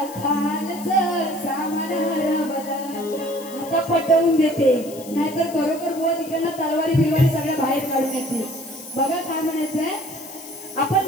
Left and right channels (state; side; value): noise; left; hiss, 17 dB below the sound